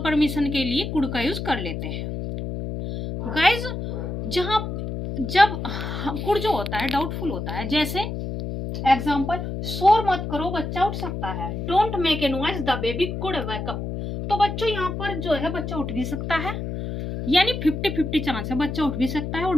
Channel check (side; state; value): left; noise; hum, 5 dB below the sound